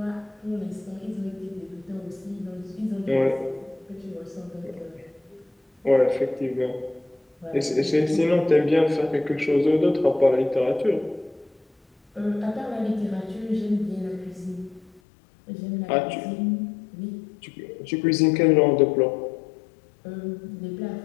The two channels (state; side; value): drops out; right; at 15.0 s